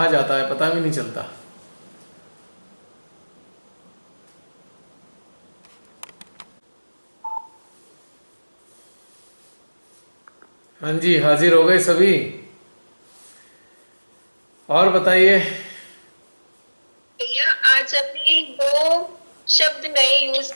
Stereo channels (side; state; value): both; inverted; correlation -1.00